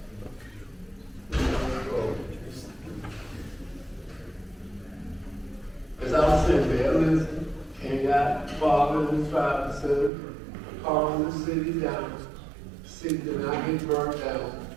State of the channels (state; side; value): drops out; left; at 10.1 s